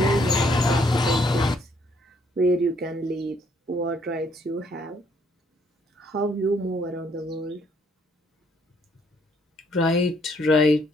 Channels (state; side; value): normal; both; correlation 0.68